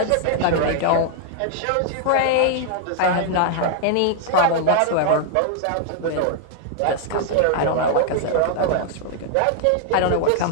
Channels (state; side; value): different; both; correlation 0.00